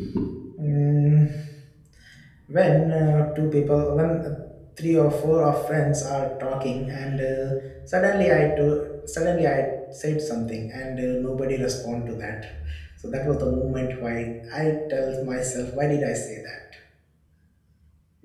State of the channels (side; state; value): both; identical; correlation 1.00